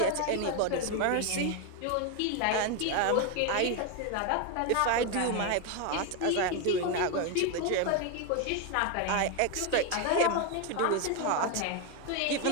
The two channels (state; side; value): different; both; correlation 0.01